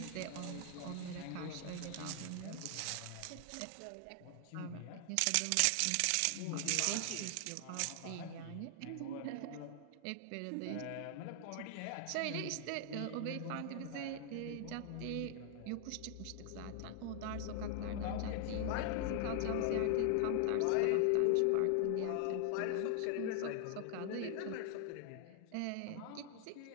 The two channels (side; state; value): both; different; correlation 0.00